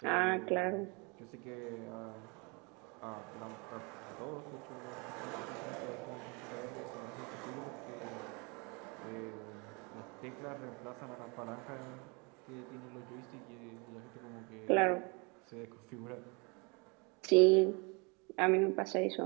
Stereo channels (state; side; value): quieter; left; 30.5 dB